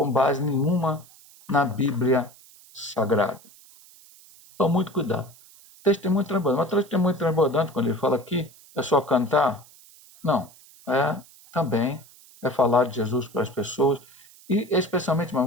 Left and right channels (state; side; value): noise; right; hiss, 24 dB below the sound